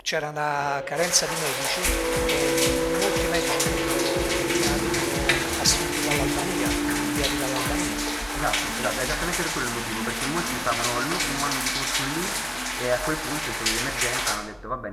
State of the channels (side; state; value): both; identical; correlation 1.00